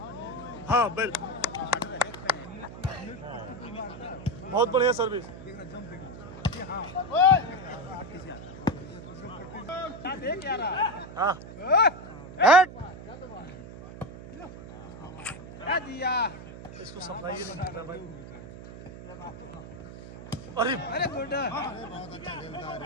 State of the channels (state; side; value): noise; right; hum, 13 dB below the sound